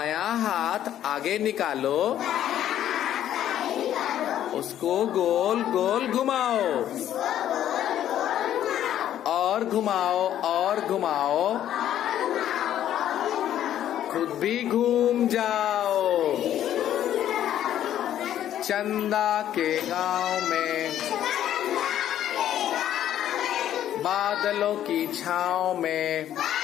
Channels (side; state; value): right; quieter; 11.3 dB